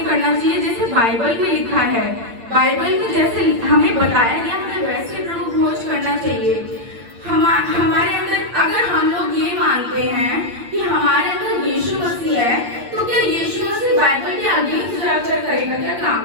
करना चाहिए जैसे बाइबल में लिखा है। बाइबल में जैसे हमें बताया गया हमें वैसे प्रभु भोज करना चाहिए। हमारे अंदर अगर हम लोग ये मानते हैं कि हमारे अंदर यीशु मसीह है, तो क्या यीशु मसीह बाइबल के आगे जाकर करेगा क्या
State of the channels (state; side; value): late; left; 8.7 ms